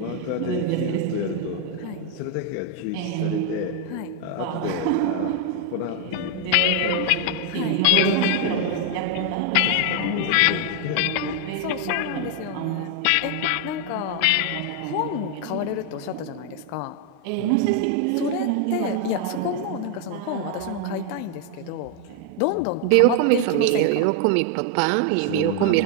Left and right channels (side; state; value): both; different; correlation 0.01